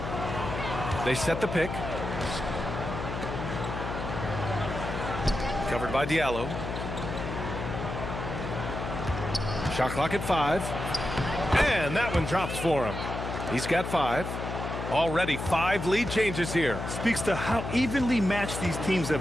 They set the pick. Covered by Diallo. Shot clock at 5. And that one drops for him. He's got 5. Already 5 lead changes here. Speaks to how evenly matched these teams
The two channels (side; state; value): left; noise; hum, 5 dB below the sound